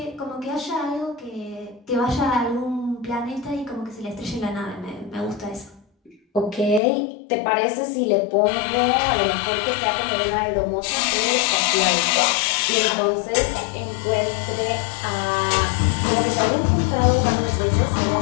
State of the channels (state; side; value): drops out; right; at 6.8 s